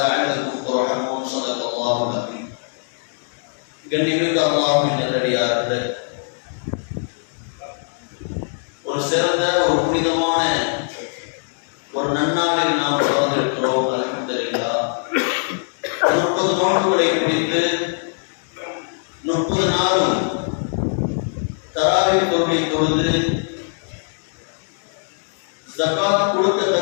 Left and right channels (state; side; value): silent; right; digital silence